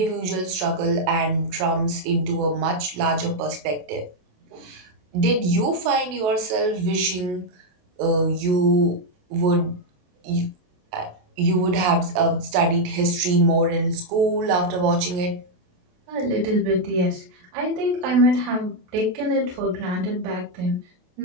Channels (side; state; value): left; late; 28 ms